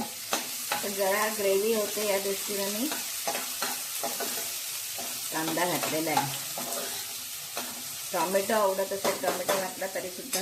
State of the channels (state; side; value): identical; both; correlation 1.00